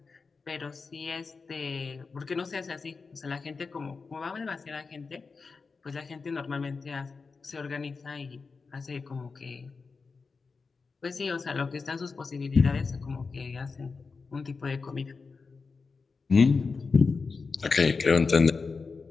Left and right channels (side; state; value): right; quieter; 4.6 dB